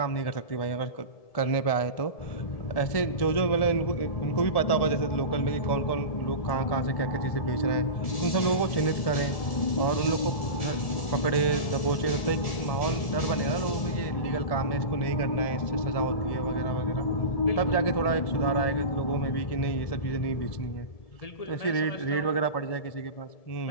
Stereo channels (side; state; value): right; late; 1.7 ms